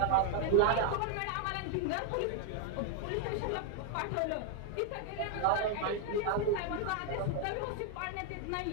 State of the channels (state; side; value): different; both; correlation 0.00